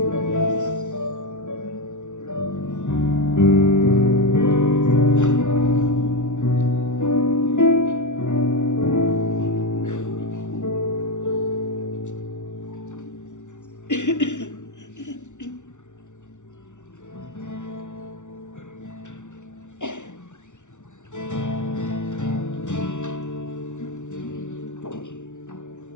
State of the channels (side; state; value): right; late; 0.85 ms